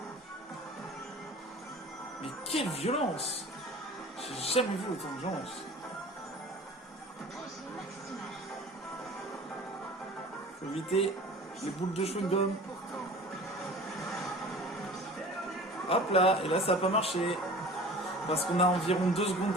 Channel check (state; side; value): normal; both; correlation 0.41